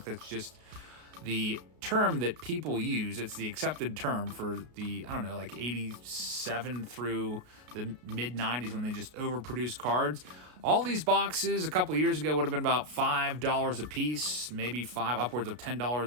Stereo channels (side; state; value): left; late; 33 ms